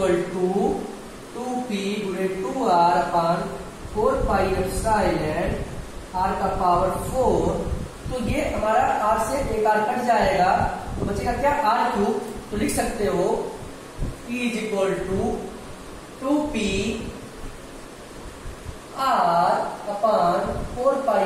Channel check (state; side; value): identical; both; correlation 1.00